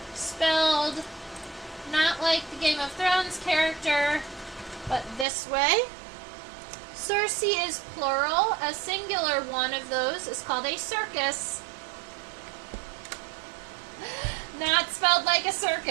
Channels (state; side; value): drops out; left; at 5.2 s